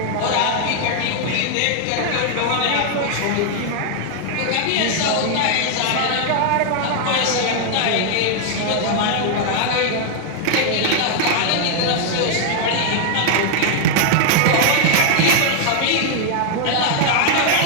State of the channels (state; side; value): different; both; correlation 0.00